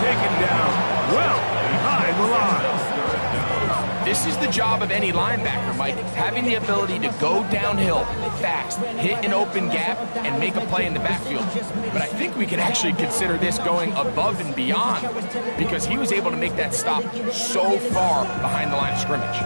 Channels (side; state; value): both; inverted; correlation -1.00